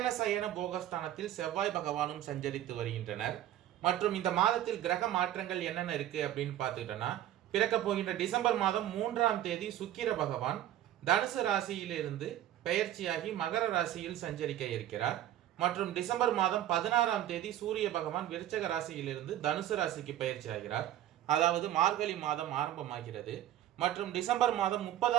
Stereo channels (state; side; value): quieter; left; 12.4 dB